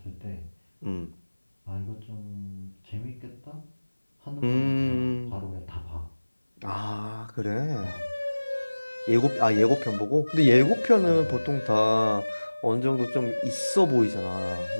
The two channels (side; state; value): both; inverted; correlation -1.00